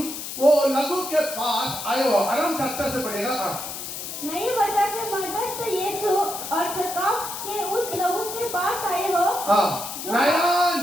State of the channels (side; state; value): left; noise; hiss, 7 dB below the sound